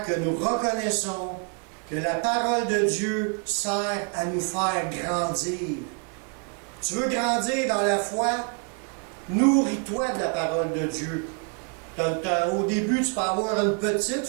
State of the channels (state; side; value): quieter; left; 36.6 dB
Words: que nous reconnaissons que la parole de Dieu sert à nous faire grandir. Tu veux grandir dans la foi? Nourris-toi de la parole de Dieu. Au début, tu peux avoir une petite